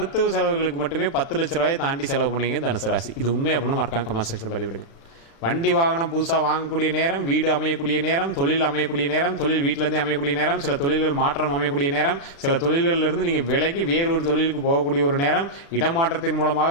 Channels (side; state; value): right; late; 36 ms